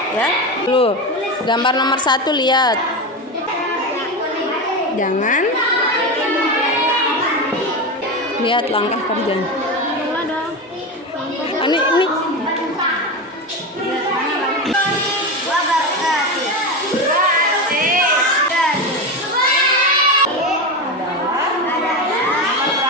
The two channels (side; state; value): both; normal; correlation 0.18